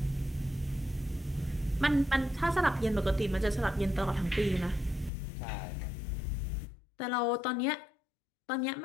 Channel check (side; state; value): right; drops out; at 5.1 s